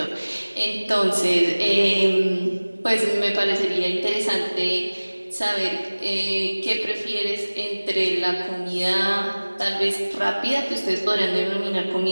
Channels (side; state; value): both; inverted; correlation -1.00